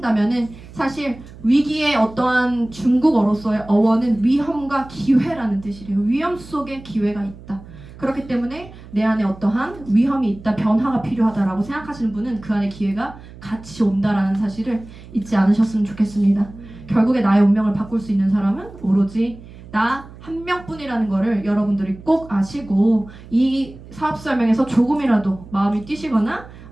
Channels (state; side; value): noise; right; hum, 18 dB below the sound